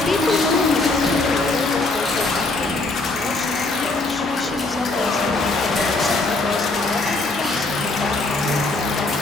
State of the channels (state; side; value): quieter; right; 3.2 dB